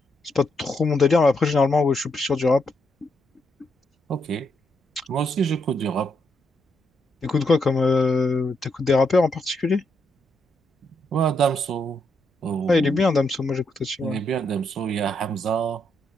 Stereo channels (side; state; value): both; normal; correlation 0.78